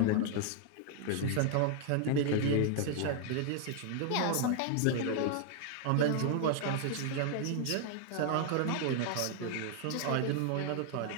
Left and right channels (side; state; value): both; different; correlation 0.00